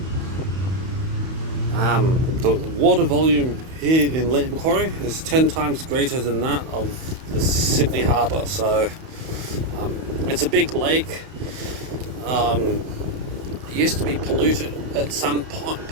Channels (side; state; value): left; late; 31 ms